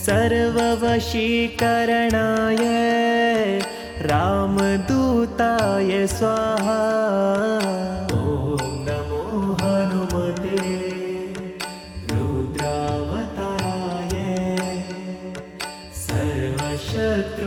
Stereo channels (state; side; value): identical; both; correlation 1.00